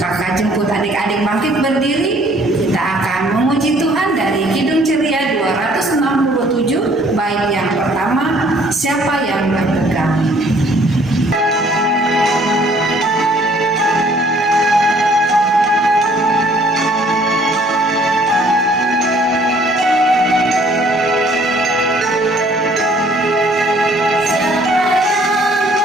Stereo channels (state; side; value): normal; both; correlation 0.59